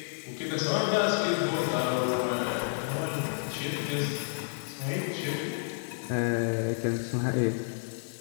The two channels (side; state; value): right; silent; 58 dB below the other